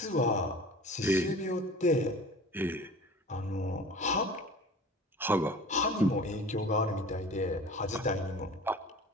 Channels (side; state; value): both; normal; correlation 0.41